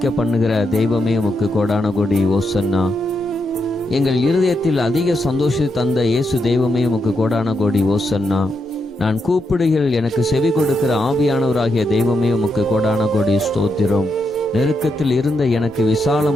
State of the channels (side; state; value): both; normal; correlation 0.83